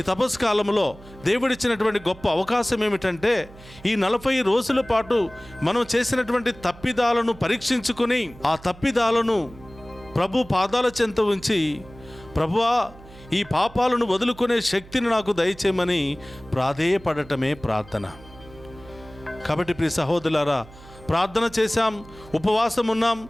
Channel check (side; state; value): right; noise; hum, 20 dB below the sound